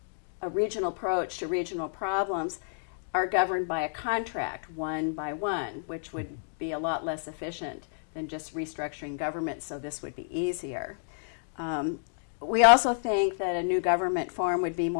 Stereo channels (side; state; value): right; silent; digital silence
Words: a regional approach to regional problems are governed by a contract, one by one, which would be a lot less efficient than just restructuring government, so this would be easier. We also think that a new government form would be